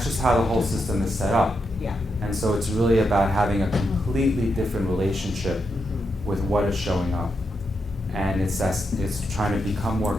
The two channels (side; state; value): both; normal; correlation 0.83